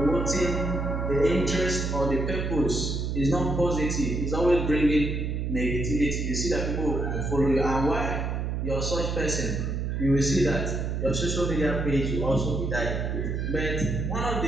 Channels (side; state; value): right; noise; hum, 1 dB below the sound